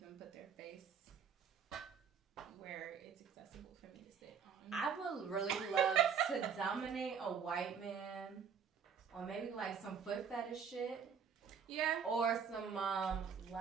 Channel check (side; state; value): left; quieter; 6.9 dB